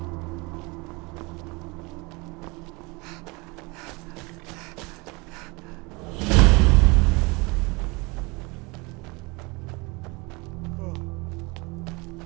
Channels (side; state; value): left; quieter; 26.7 dB